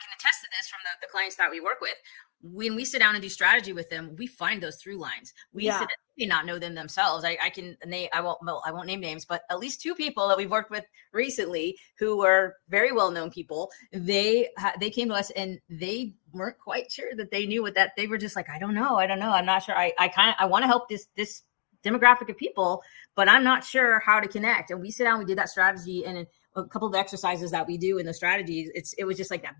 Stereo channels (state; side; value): silent; right; digital silence